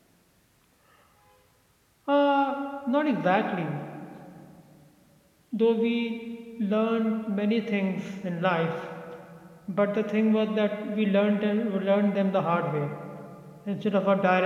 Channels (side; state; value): both; identical; correlation 1.00